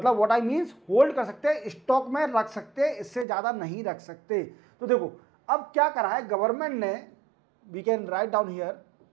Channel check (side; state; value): left; drops out; at 3.2 s